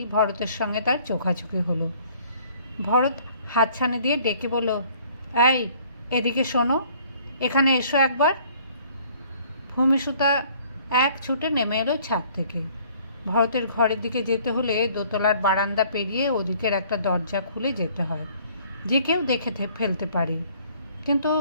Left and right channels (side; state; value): both; inverted; correlation -0.57